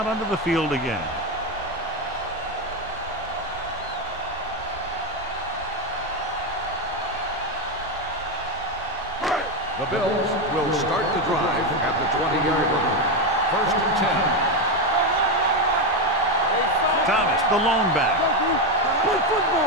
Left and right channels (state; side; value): noise; right; rumble, 17 dB below the sound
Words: onto the field again. The Bills will start the drive at the 20-yard line. First and 10. Thomas, the lone back.